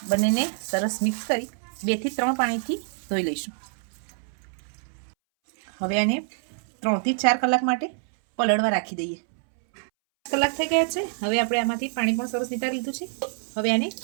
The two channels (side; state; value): left; silent; 61 dB below the other